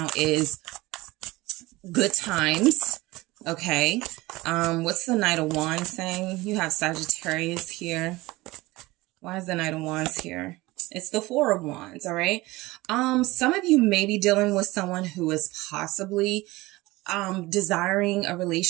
is good times Okay. What's the Knight of Wands saying? You have Sagittarius here. Why is the Knight of Wands here? It's the Four of Wands, all right? Some of you may be dealing with someone who is possibly desiring a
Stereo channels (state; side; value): quieter; left; 20.3 dB